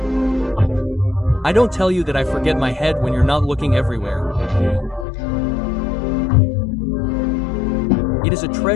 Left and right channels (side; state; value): right; drops out; at 5.1 s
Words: I don't tell you that I forget my head when you're not looking everywhere. It is a